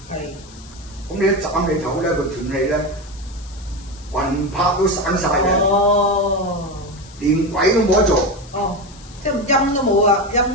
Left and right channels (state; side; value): noise; left; hiss, 21 dB below the sound